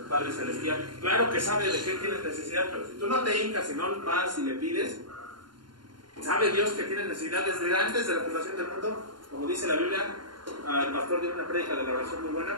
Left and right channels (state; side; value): late; left; 0.71 ms